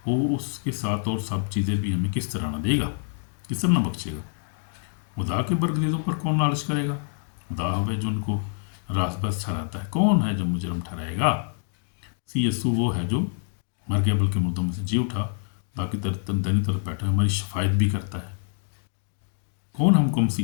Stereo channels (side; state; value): right; silent; digital silence